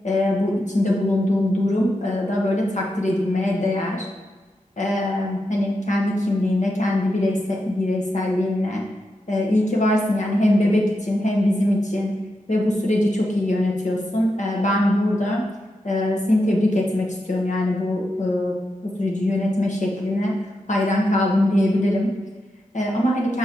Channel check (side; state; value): both; normal; correlation 0.86